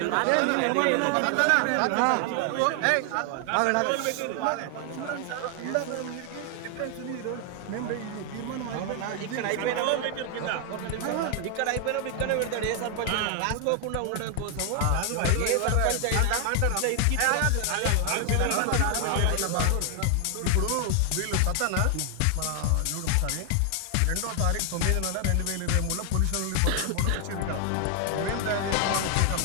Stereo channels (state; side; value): different; both; correlation 0.00